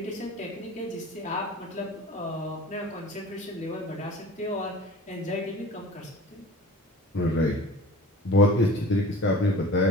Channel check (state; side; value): normal; both; correlation 0.41